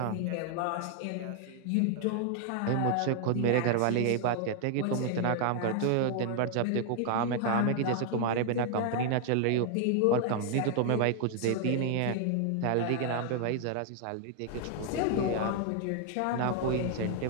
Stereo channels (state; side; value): different; both; correlation 0.00